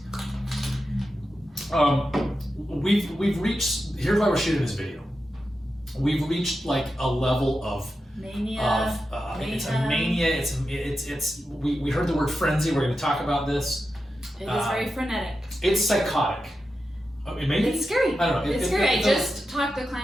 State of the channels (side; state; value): both; normal; correlation 0.90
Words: We've reached. Here's why we're shooting this video. We've reached like a level of mania. It's a mania. We heard the word frenzy. We're going to talk about this. It is very frenetic. It's psychotic. Maybe it's scary. I don't know. It's scary. I just talked the